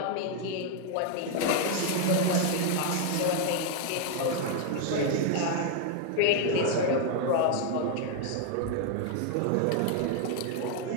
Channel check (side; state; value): both; different; correlation 0.00